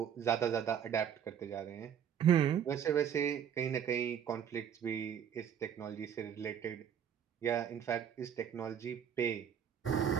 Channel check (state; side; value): quieter; left; 8.7 dB